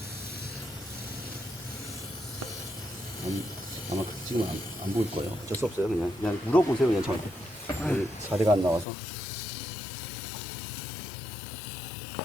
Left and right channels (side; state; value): right; drops out; at 8.8 s